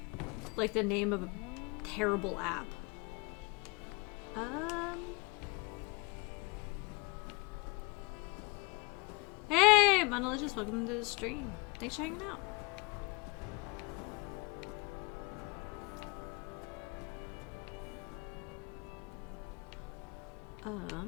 like the name of a terrible app. Hey, Monolicious, welcome to the stream. Thanks for hanging out.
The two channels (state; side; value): quieter; right; 27.4 dB